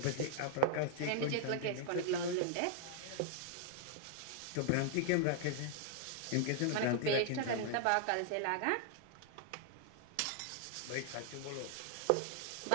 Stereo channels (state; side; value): different; both; correlation -0.01